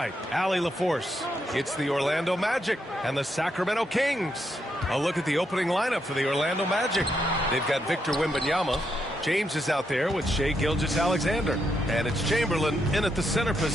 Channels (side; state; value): both; normal; correlation 0.80